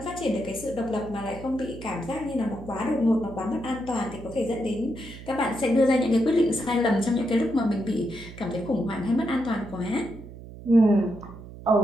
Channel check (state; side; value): noise; right; hum, 15 dB below the sound